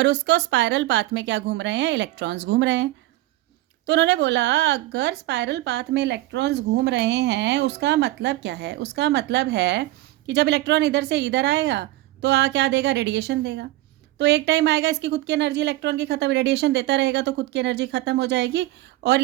उसको स्पायरल पाथ में क्या घूम रहे हैं, इलेक्ट्रॉन्स घूम रहे हैं। तो उन्होंने बोला अगर स्पायरल पाथ में इलेक्ट्रॉन्स घूम रहे हैं उसका मतलब क्या है, उसका मतलब है कि जब इलेक्ट्रॉन इधर से इधर आएगा तो क्या देगा, रेडिएशन देगा। तो एक टाइम आएगा इसकी खुद की एनर्जी इलेक्ट्रॉन की खत्म, रेडिएशन देता रहेगा तो खुद की एनर्जी खत्म हो जाएगी और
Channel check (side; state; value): left; quieter; 17.1 dB